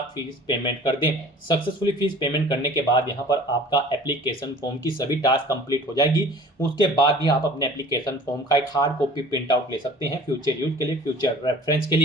फीस पेमेंट कर दें। सक्सेसफुली फीस पेमेंट करने के बाद यहाँ पर आपका एप्लीकेशन फॉर्म की सभी टास्क कंप्लीट हो जाएगी। उसके बाद भी आप अपने एप्लीकेशन फॉर्म का एक हार्ड कॉपी प्रिंट आउट ले सकते हैं फ्यूचर यूज के लिए, फ्यूचर रेफरेंस के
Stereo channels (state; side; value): normal; both; correlation 0.46